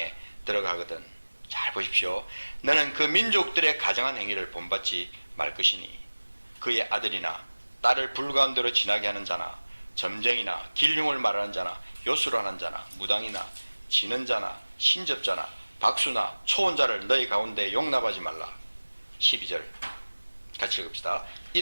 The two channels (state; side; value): inverted; both; correlation -1.00